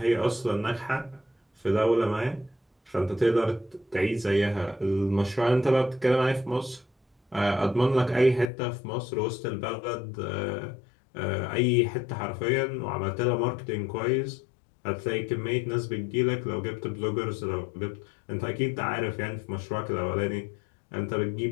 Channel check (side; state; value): right; drops out; at 8.5 s